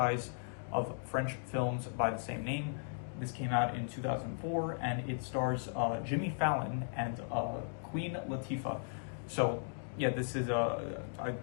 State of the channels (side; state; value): right; silent; digital silence